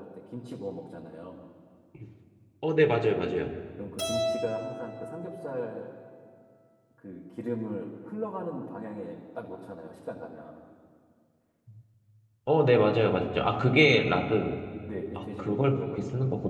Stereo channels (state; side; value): identical; both; correlation 1.00